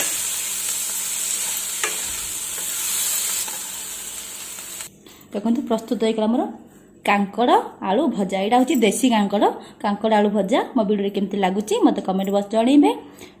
देखो प्रस्तुत होगा मोर कांकड़ आलू भजा। यहाँ हूँ देसी कांकड़ कांकड़ आलू भजा। मो वीडियो केमती लगुच मत कमेंट बॉक्स जनइबे।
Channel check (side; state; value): both; identical; correlation 1.00